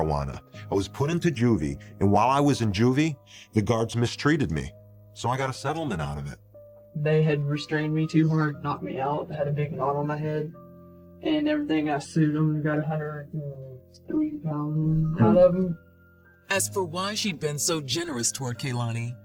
I was put into juvie, and while I was in juvie, the guards mistreated me. So I got a settlement out of it. They had restrained me too hard, knocked me out, had a big knot on my head, and everything. I sued them and got $103,000 out of them. As for why she'd been so generous toward Kehlani,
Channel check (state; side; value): identical; both; correlation 1.00